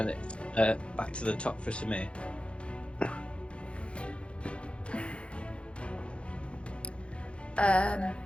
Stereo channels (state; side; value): late; right; 0.058 ms